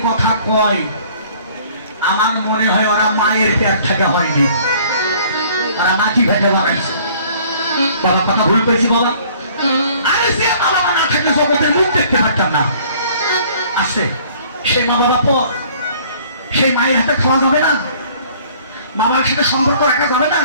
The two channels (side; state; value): both; inverted; correlation -0.55